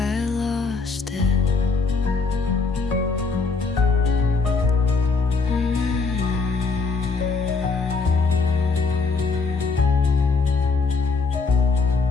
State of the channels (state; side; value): quieter; right; 4.3 dB